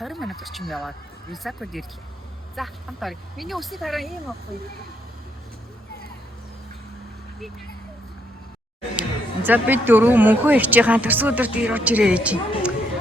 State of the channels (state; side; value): normal; both; correlation 0.74